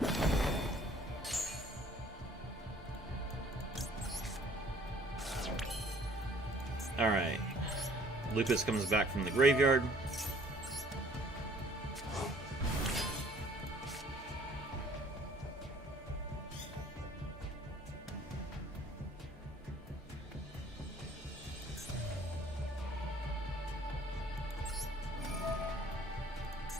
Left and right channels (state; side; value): normal; both; correlation 0.56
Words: Alright. Lupus comes back from the graveyard.